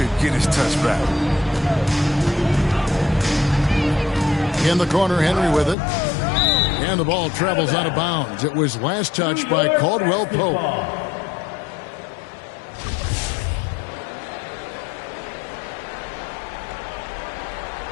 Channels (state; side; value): drops out; right; at 5.8 s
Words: get his touch back. In the corner, Henry with it. And the ball travels out of bounds. It was last touched by Caldwell Pope.